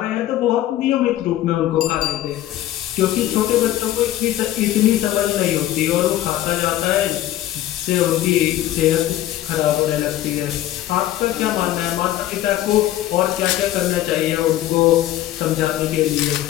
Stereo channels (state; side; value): quieter; right; 13.7 dB